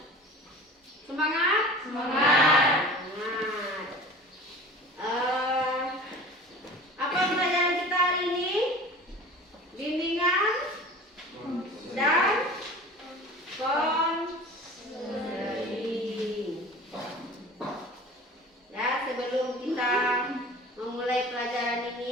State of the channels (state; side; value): normal; both; correlation 0.40